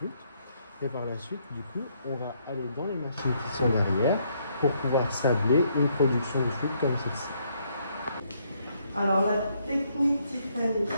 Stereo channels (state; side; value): inverted; both; correlation -0.71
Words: Et par la suite, du coup, on va aller dans les machines qui sont derrière pour pouvoir sabler une production de flûte comme celle-ci. Alors la technique Tiffany,